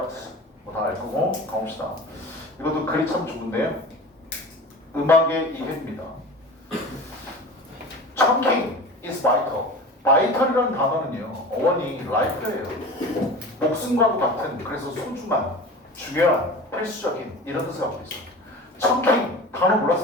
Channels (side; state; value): both; normal; correlation 0.35